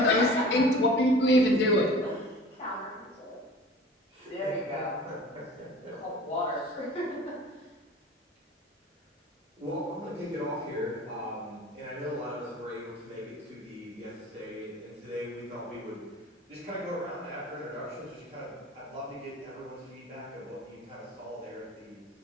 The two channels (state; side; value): normal; both; correlation 0.42